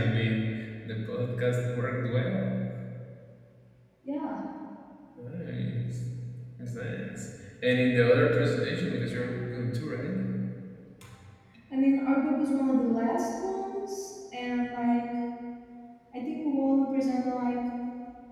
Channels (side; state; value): both; identical; correlation 1.00